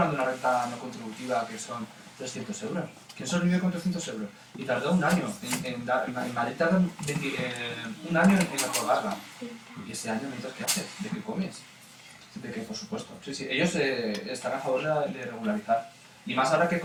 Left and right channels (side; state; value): both; identical; correlation 1.00